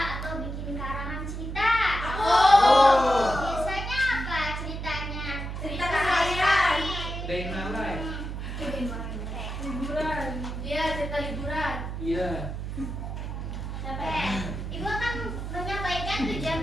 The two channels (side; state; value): right; noise; hum, 6 dB below the sound